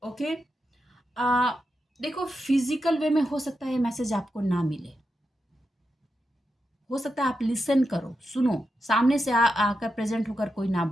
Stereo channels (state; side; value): normal; both; correlation 0.87